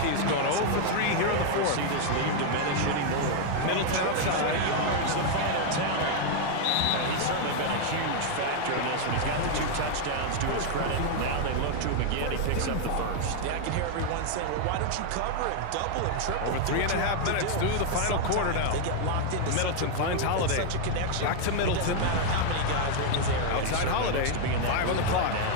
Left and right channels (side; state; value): both; different; correlation 0.00